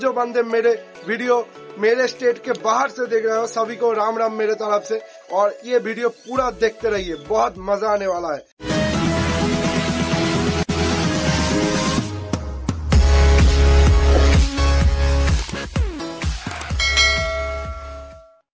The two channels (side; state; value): both; identical; correlation 1.00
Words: जो बंदे मेरे वीडियो मेरे स्टेट के बाहर से देख रहे हो, सभी को राम राम मेरे तरफ से। और ये वीडियो पूरा देखते रहिए, बहुत मजा आने वाला है।